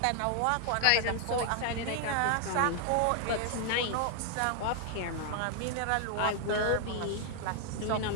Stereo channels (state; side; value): different; both; correlation 0.00